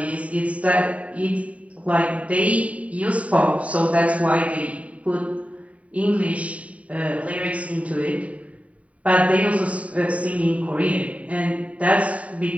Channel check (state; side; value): late; left; 0.067 ms